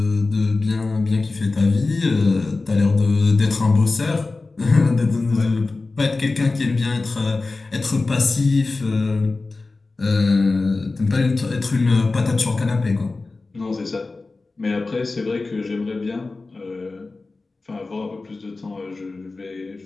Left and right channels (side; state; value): right; quieter; 3.6 dB